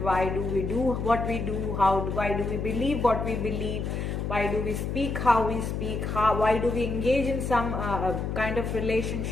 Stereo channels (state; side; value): noise; left; hum, 3 dB below the sound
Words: do we do what we do, why do we believe what we believe, why do we speak how we speak, why do we engage in some kind of